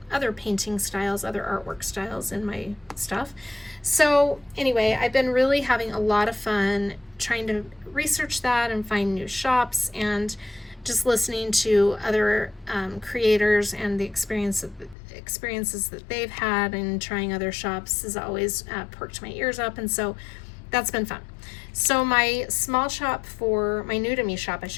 painting styles, other artwork styles in my stuff. So anyway, I've been really having a lot of fun trying to research that and find new shops, and just listening to other creators and the experiences that they've had, and trying other shops has always perked my ears up, and so that's been fun. So my small shop for, my new to me shop, I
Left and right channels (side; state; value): right; drops out; at 15.0 s